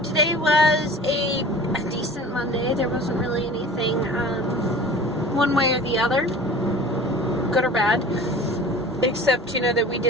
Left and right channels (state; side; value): normal; both; correlation 0.41